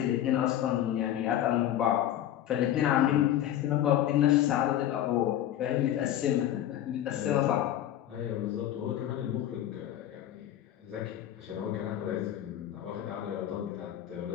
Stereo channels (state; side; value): quieter; right; 11.9 dB